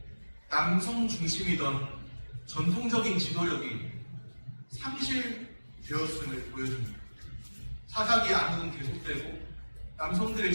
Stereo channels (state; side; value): inverted; both; correlation -1.00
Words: 남성 중심이던 전통적인 지도력이 상실되었음을 보여줍니다. 사사기 암흑은 계속되고 남성들의